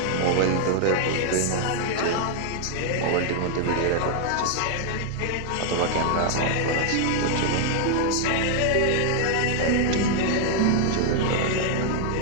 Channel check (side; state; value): both; different; correlation 0.00